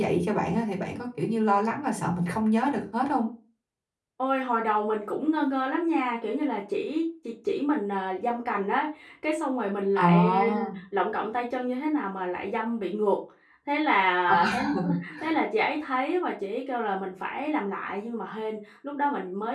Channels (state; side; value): identical; both; correlation 1.00